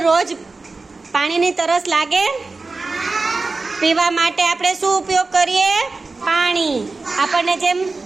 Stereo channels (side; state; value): left; quieter; 3.7 dB